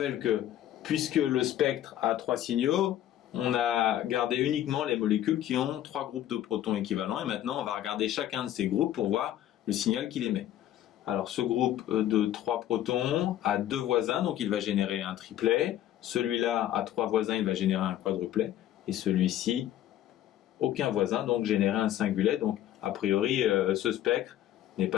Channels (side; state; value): right; quieter; 12.3 dB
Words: que, puisque le spectre a 3 signaux, on a gardé uniquement les molécules qui ont 3 groupes de protons équivalents. Et maintenant, on va regarder chacun de ces groupes pour voir le signal qu'il émet. Alors, ce groupe de 3 protons a 2 voisins, donc il va générer un triplet. Celui-là a 3 voisins, il va générer un quadruplet. Et celui-ci, aucun voisin, donc générer un singulet. Donc, a priori, ce spectre n'est